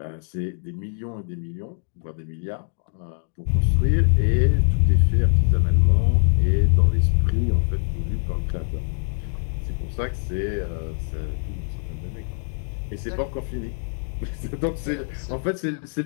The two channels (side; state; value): right; silent; digital silence